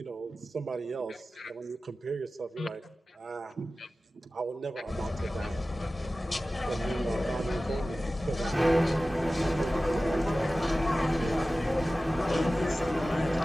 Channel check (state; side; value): normal; both; correlation 0.96